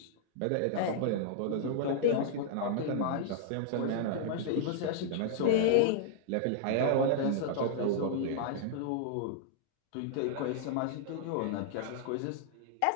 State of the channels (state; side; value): different; both; correlation -0.01